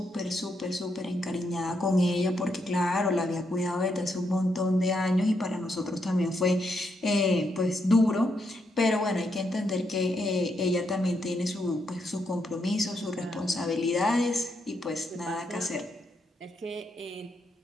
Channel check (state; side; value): normal; both; correlation 0.79